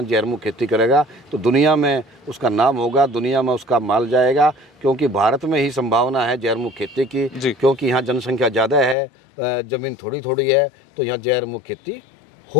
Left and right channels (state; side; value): drops out; right; at 9.0 s